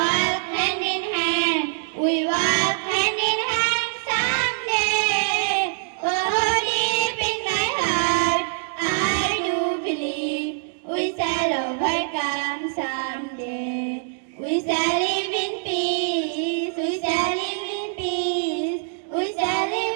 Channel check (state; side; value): silent; left; digital silence